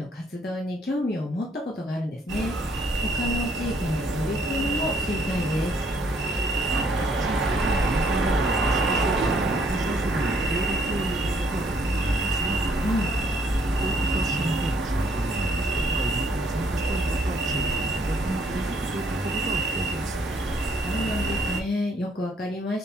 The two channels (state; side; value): normal; both; correlation 0.65